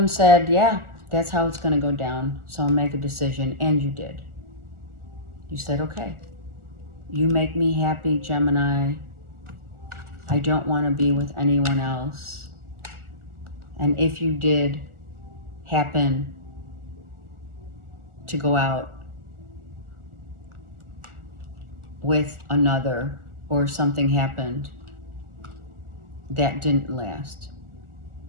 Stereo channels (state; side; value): late; left; 1.4 ms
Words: said, yeah, that's how it's going to go down. So I'll make a decision. And you did. You said, okay. You make me happy, Gemini. I don't want to be with anyone else. And if you did happen to go out with another, or something happened, that didn't last.